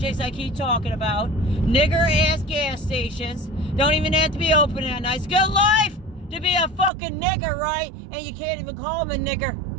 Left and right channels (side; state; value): left; drops out; at 6.9 s